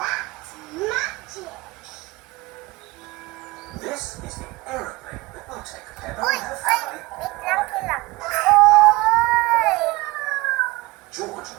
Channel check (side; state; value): left; quieter; 21.6 dB